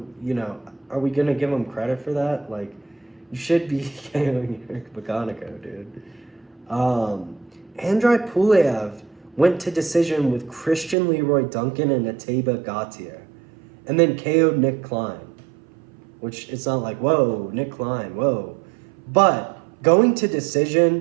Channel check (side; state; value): left; drops out; at 11.0 s